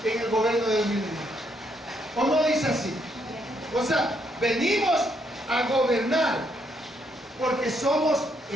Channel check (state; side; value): normal; both; correlation 0.74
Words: en el gobierno del milenio. ¿O no dice así? O sea, venimos a gobernar porque somos